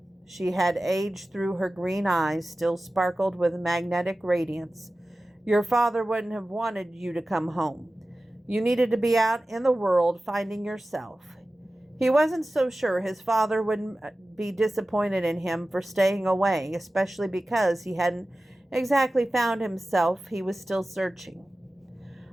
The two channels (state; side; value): normal; both; correlation 0.96